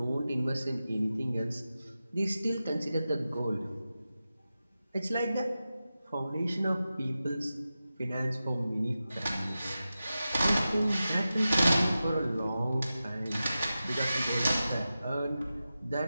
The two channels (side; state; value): both; inverted; correlation -0.93